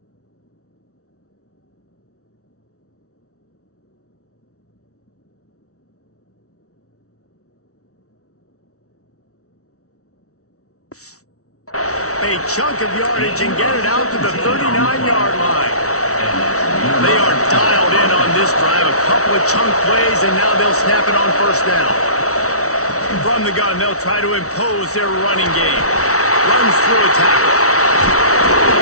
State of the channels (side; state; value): right; late; 0.64 ms